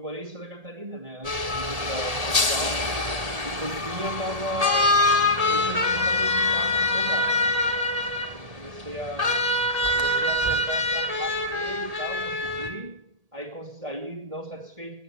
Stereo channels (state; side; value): late; left; 1.8 ms